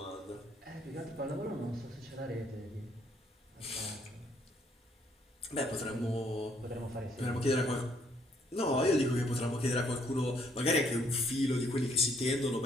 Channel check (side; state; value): both; normal; correlation 0.67